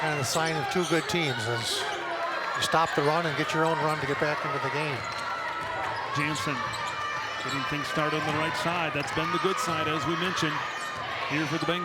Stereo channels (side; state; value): both; identical; correlation 1.00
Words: of the sign of two good teams, is you stop the run and get your own run to get back into the game. Jansen getting things started on the right side. That's been the good side, as we mentioned, here for the